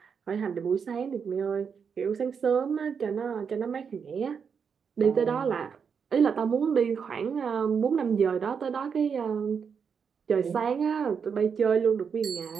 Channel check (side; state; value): left; quieter; 6.5 dB